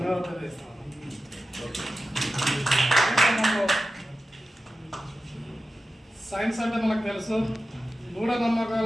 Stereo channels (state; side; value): normal; both; correlation 0.93